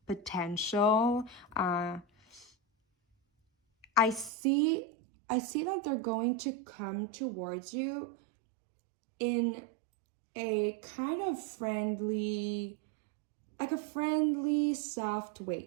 potential. I see that they're going to come towards you in a kind of friendly, like a friendly, soft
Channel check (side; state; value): left; drops out; at 4.3 s